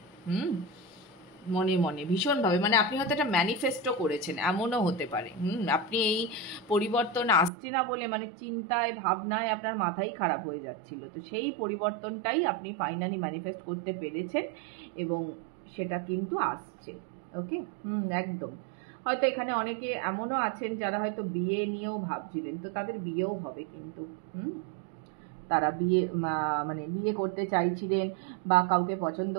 মনে মনে ভীষণভাবে, মানে আপনি হয়তো একটা ম্যানিফেস্টো করেছেন, এমনও হতে পারে। আপনি এই পরিবর্তন আসছে না বলে মানে চিন্তায় ভাবনায় আপনার মাথাই খারাপ হয়ে যাচ্ছিল, তো সেই পরিবর্তনটাই আপনি ফাইনালি ম্যানিফেস্ট করতে পেরেছেন এবং সেটা কিন্তু আসছে। ওকে, একদম। হয়তো এখানে অনেকে এমনও আছেন যারা হয়তো বিয়ে নিয়েও ভাবছিলেন, তো তাদের বিয়েও হবে কিন্তু। তারা মানে বিয়ে করতে চাইছিলেন বা কাউকে পছন্দ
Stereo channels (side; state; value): left; drops out; at 7.5 s